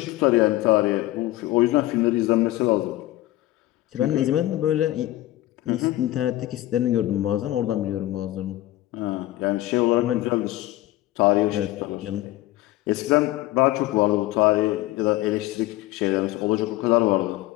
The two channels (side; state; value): right; quieter; 16.4 dB